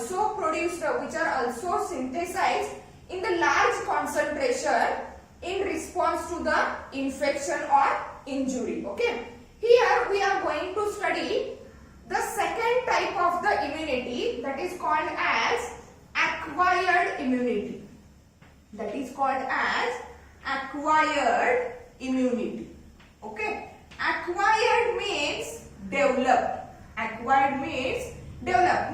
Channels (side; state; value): both; identical; correlation 1.00